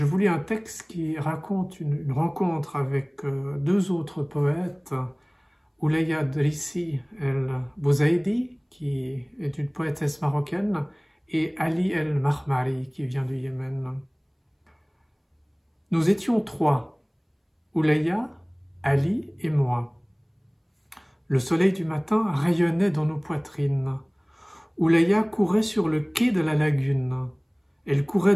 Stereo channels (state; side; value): identical; both; correlation 1.00